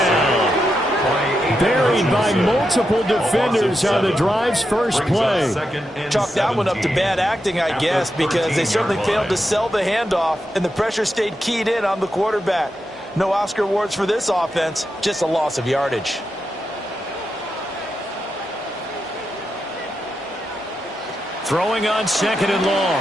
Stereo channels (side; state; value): both; normal; correlation 0.86